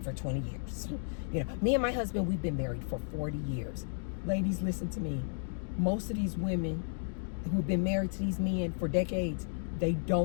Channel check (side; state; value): right; silent; digital silence